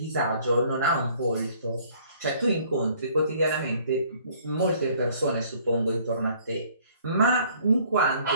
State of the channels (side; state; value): both; inverted; correlation -0.59